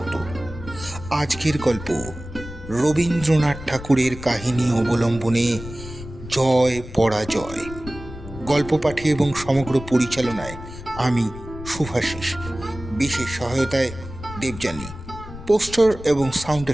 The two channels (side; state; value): left; noise; rumble, 13 dB below the sound